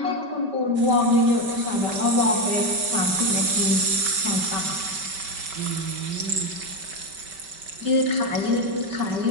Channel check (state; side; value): late; left; 5.2 ms